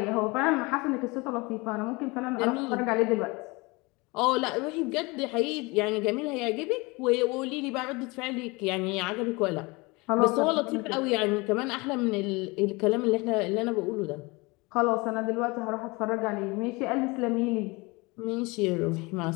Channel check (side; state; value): right; quieter; 25.3 dB